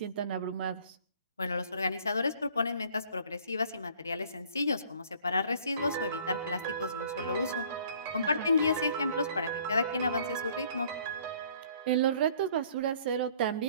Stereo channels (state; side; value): inverted; both; correlation -0.56